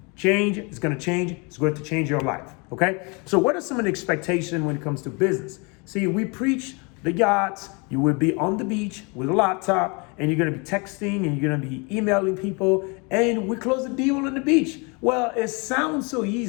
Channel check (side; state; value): right; quieter; 30.7 dB